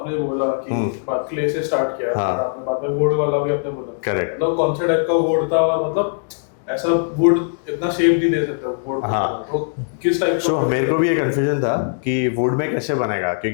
बोला कि बात क्ले से स्टार्ट किया, हाँ। और आपने बाद में वुड वाला भी आपने बोला, करेक्ट। मतलब कौन से टाइप का वुड था और मतलब ऐसा वुड इतना शेप नहीं दे सकता वुड। हाँ। तो किस टाइप सो मेरे को भी ये कंफ्यूजन था कि वुड में कैसे बनेगा,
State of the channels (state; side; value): silent; right; digital silence